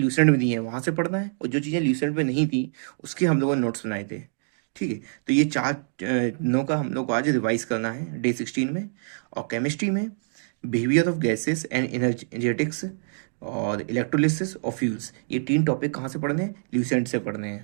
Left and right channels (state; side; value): silent; left; digital silence